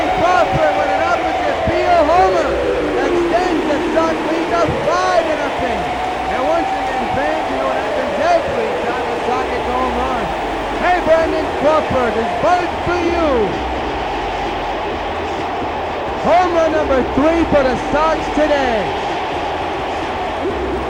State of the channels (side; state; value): both; identical; correlation 1.00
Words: Crawford with an opposite field homer. Extends the Sox lead to 5-0. And once again, fans, you know what happens every time the Sox gets a home run. Hey, Brandon Crawford, this bird's for you. Home run number 3 for the Sox today.